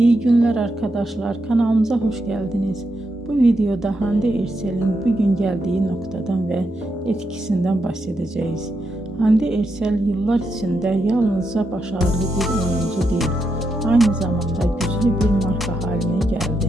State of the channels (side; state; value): both; normal; correlation 0.83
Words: günler arkadaşlar, kanalımıza hoş geldiniz. Bu videoda Hande Erçel'in bugün geldiği noktadan ve etkisinden bahsedeceğiz. Hande Erçel yıllar içinde yalnızca başarılı bir oyuncu değil, aynı zamanda güçlü bir marka haline